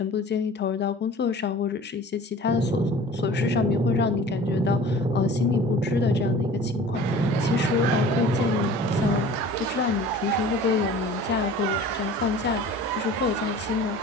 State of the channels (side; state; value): both; normal; correlation 0.43